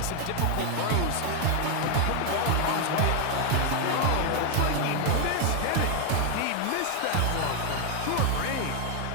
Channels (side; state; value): both; different; correlation 0.01